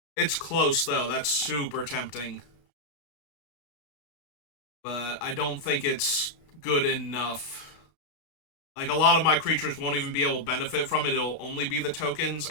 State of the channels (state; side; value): late; right; 33 ms